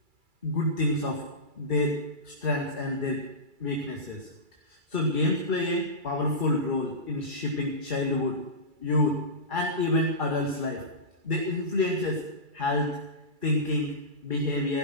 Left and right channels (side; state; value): left; late; 2.3 ms